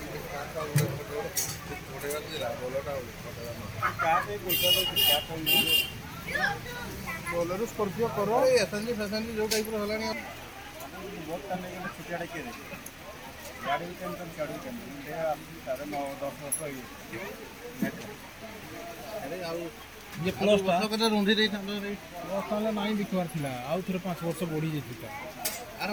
ବୋଲେରୋ ସ୍କର୍ପିଓ କର ଏସଏନଜି ଫେସଏନଜି ଯୋଉ ଟାଇପ୍ର ହେଲାଣି ବହୁତ ତାହେଲେ ଛୁଟିଆଟା କିଏ ଦେଖେ ଗାଡ଼ି ବି କେମିତି ଗାଡ଼ି ବି କେମିତି ତାର 9-10 ବର୍ଷ ଆରେ ଆଉ ये प्लस टा କଥା ରୁନ୍ଧି ଦେଇଥାନ୍ତ प्लस ताले नाही बिकवार थिला आउ थरे 5 वर्ष बढ़ी जेतिका ଆରେ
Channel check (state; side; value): identical; both; correlation 1.00